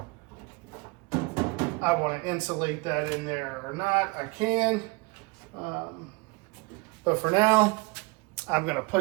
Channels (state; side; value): quieter; left; 26.6 dB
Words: want to insulate that in there or not, I can. But for now, I'm going to